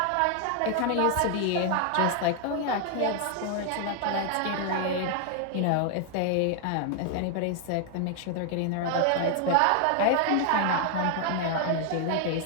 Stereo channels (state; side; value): different; both; correlation 0.00